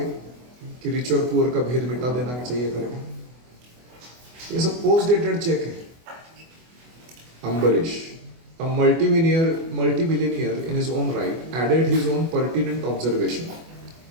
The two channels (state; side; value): late; left; 24 ms